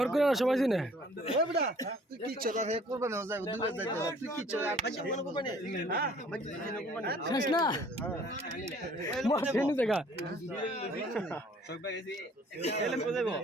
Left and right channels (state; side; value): normal; both; correlation 0.56